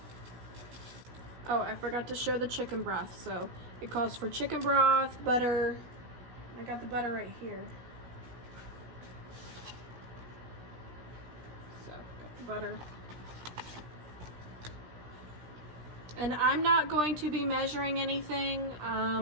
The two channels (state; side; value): late; left; 16 ms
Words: Oh, I forgot to show the chicken broth. So it calls for chicken broth, butter. I got the butter right here. So, got the butter. And I'm not going to be measuring anything.